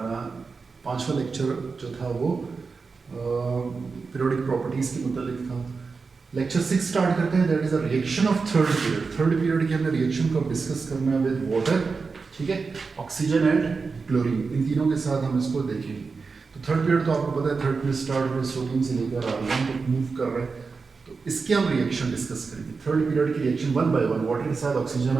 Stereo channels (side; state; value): left; quieter; 4.7 dB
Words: 5वां लेक्चर जो था वो पीरियोडिक प्रॉपर्टीज़ के मुतालिक था। लेक्चर 6 स्टार्ट करते हैं, that is a reaction of third period. Third period की हमने रिएक्शन को डिस्कस करना है विद वाटर, ठीक है, ऑक्सीजन एंड क्लोरीन, इन तीनों के साथ हम इसको देखेंगे। तो थर्ड पीरियड तो आपको पता है, थर्ड पीरियड स्टार्ट में सोडियम से लेकर आर्गन तक मूव कर रहे हैं। इसके हम रिएक्शन डिस्कस करेंगे। थर्ड पीरियड की रिएक्शन 1 बाय 1 वाटर के साथ, ऑक्सीजन